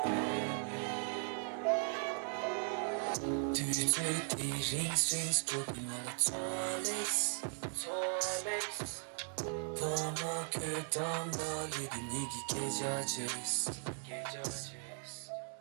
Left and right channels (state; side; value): silent; left; 52 dB below the other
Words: Strings dropping on the toilets 보모 교담다 리듬 얘기 계좌제스